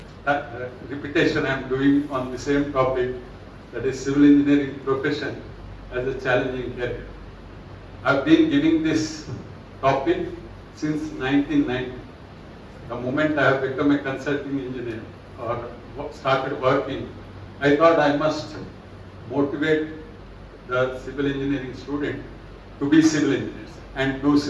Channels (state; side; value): identical; both; correlation 1.00